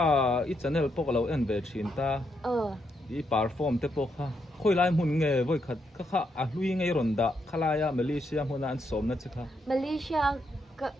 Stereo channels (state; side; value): normal; both; correlation 0.79